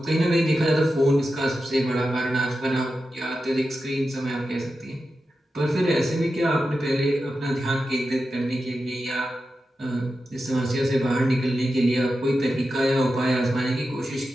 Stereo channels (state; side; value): normal; both; correlation 0.91